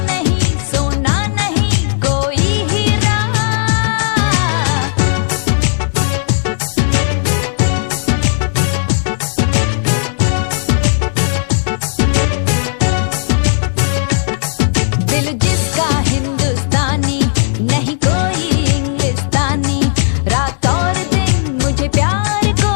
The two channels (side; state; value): right; silent; digital silence